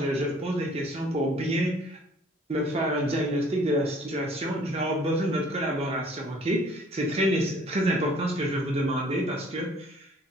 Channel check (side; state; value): both; normal; correlation 0.56